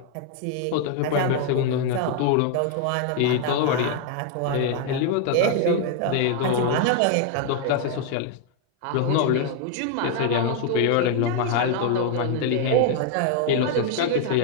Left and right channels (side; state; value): both; different; correlation 0.00